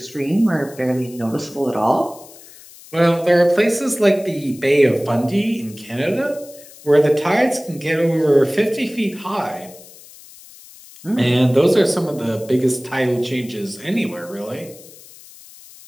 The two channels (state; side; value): noise; left; hiss, 21 dB below the sound